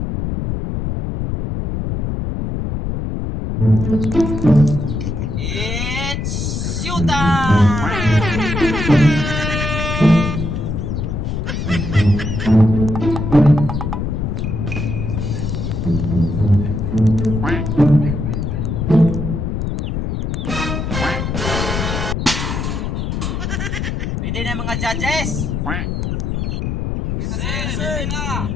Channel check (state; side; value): noise; left; rumble, 2 dB below the sound